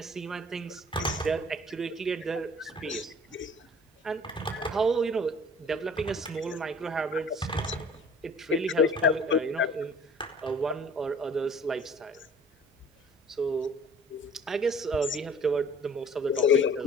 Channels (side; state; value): both; normal; correlation 0.49